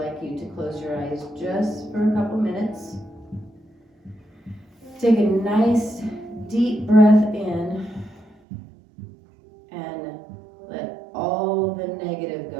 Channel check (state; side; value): drops out; left; at 8.3 s